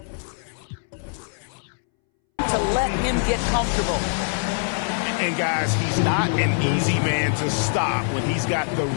to let him get comfortable. And guys, he's not an easy man to stop when he's got the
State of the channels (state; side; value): silent; right; 63 dB below the other